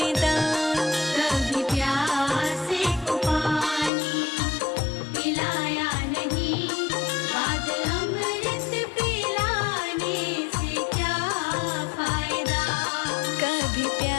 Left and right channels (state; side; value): drops out; right; at 3.9 s